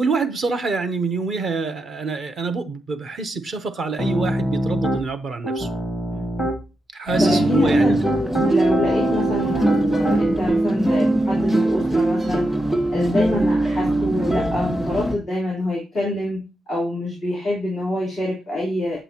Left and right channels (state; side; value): normal; both; correlation 0.86